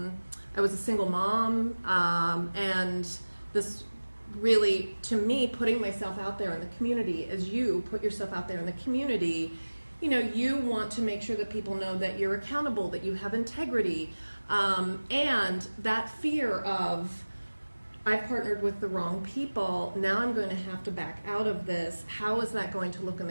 was a single mom, and this really, to me, putting myself out there in the community, as you put yourself out there in the community, you want to make sure that people know that you're accountable, that you have integrity, and that fear of, I've partnered with the wrong people, now I'm going to have to back out of this. How is that going to look in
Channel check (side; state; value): both; inverted; correlation -1.00